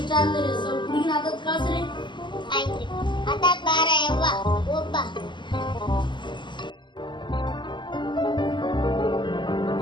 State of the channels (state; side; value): late; right; 0.22 ms